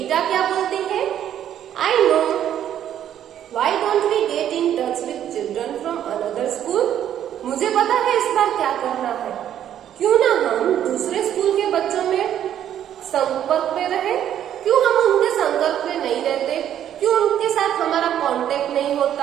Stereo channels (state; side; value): quieter; left; 10.5 dB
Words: क्या बोलती है, I know. Why don't we get in touch with children from another school? मुझे पता है इस बार क्या करना है। क्यों ना हम दूसरे स्कूल के बच्चों में संपर्क में रहे। क्यों हम उनके संपर्क में नहीं रहते, क्यों उनके साथ हमारा कांटेक्ट नहीं